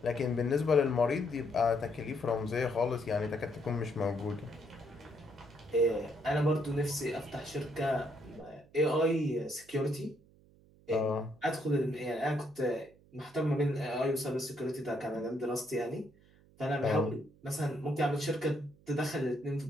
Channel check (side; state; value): right; noise; hum, 27 dB below the sound